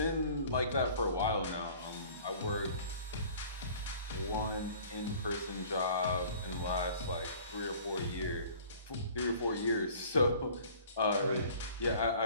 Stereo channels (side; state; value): both; inverted; correlation -0.49